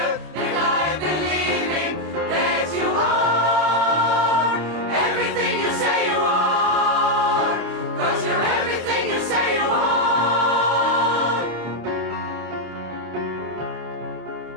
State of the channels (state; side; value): late; left; 25 ms